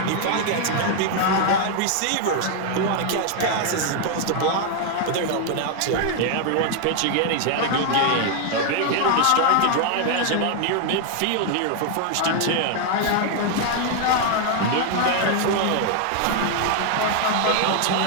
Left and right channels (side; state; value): both; different; correlation 0.00